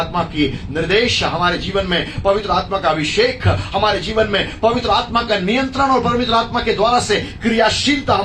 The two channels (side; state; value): both; identical; correlation 1.00